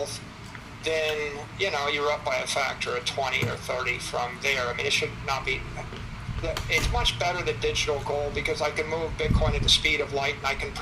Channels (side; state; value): both; identical; correlation 1.00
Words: then, you're up by a factor of 20 or 30 from there. I mean, it should not be... It's much better than digital gold because I can move Bitcoin at the speed of light and I can